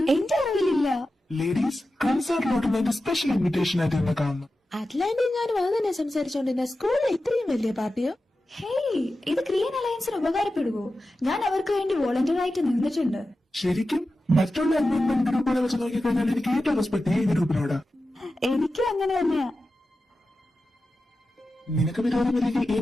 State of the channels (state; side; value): normal; both; correlation 0.93